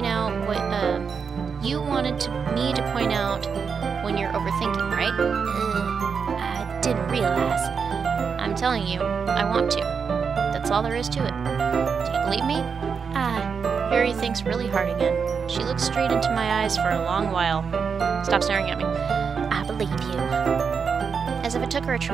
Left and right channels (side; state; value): left; quieter; 6.0 dB